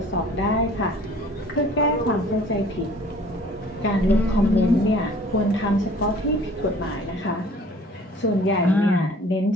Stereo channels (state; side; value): normal; both; correlation 0.51